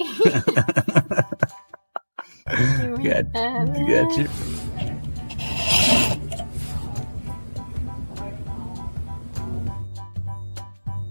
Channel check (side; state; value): both; inverted; correlation -1.00